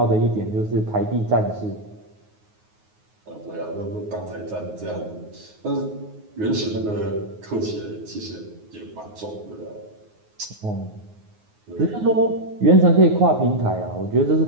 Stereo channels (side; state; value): left; late; 9.5 ms